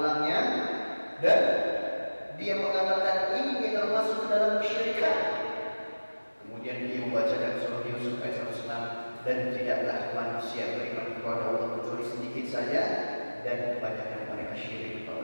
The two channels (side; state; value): both; inverted; correlation -1.00